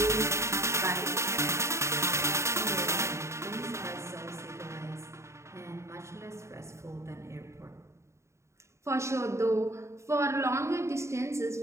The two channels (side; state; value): left; late; 0.14 ms